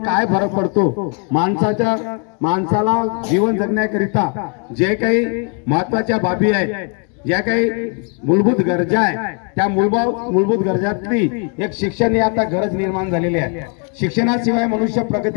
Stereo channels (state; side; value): quieter; right; 38.8 dB